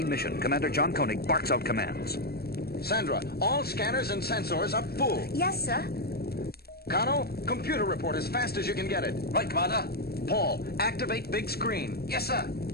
mission, Commander John Koenig barks out commands. Sandra, all scanners and sensors are full. Yes, sir. Kano, computer report as fast as you can get it. Right, Commander. Paul, activate big screen. Yes, sir.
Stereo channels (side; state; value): right; late; 0.46 ms